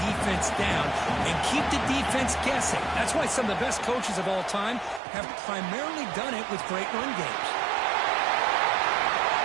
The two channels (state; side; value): drops out; left; at 5.0 s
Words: defense down and keep the defense guessing. That's why some of the best coaches of all time have primarily done it with great run games.